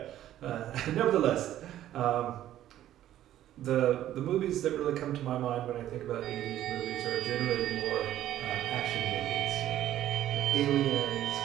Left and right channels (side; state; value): left; quieter; 12.6 dB